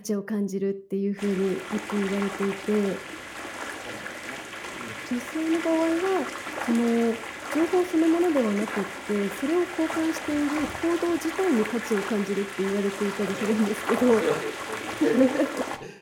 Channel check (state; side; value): identical; both; correlation 1.00